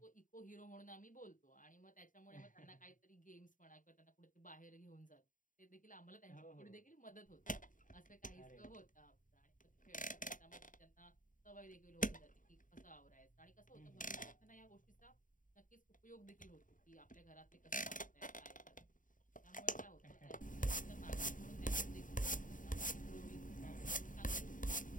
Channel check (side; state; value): right; late; 0.38 ms